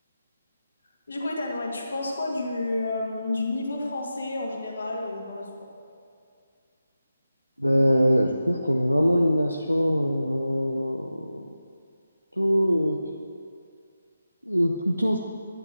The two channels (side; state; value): both; inverted; correlation -0.93